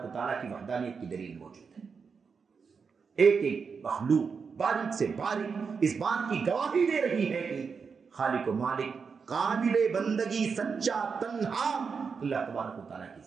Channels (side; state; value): left; quieter; 5.6 dB